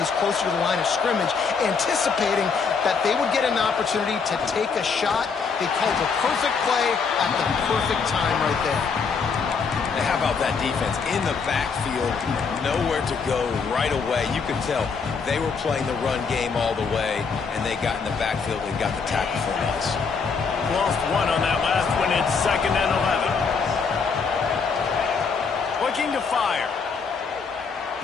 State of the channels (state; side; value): quieter; right; 5.4 dB